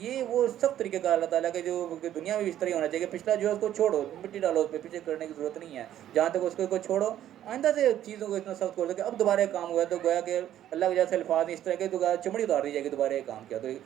وہ سخت طریقہ کار اللہ تعالیٰ کے جو کہ دنیا میں بھی اس طرح ہونا چاہیے کہ پچھلا جو ہے اس کو چھوڑو، مٹی ڈالو اس پہ، پیچھے کرنے کی ضرورت نہیں ہے، جہاں تک اس کو چھوڑو، آئندہ سے چیزوں کو اتنا سخت کر دو کہ اب دوبارہ ایک کام ہوا ہے تو گویا کہ اللہ کے جیسے الفاظ اس طرح کے تو چمڑی اتار دی جائے گی، دوبارہ ایک کام کیا تو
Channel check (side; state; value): left; quieter; 11.7 dB